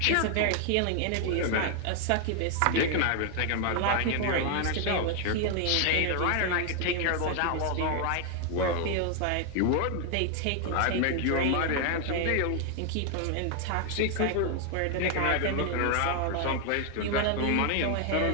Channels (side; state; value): both; different; correlation 0.00